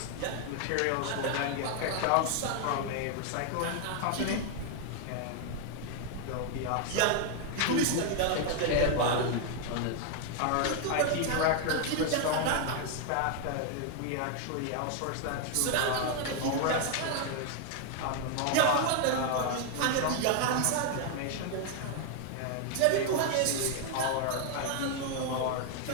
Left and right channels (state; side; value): different; both; correlation 0.00